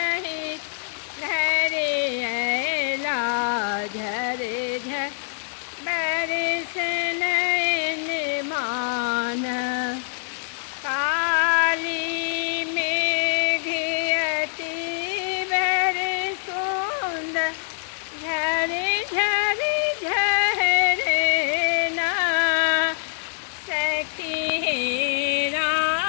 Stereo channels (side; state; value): right; silent; 62 dB below the other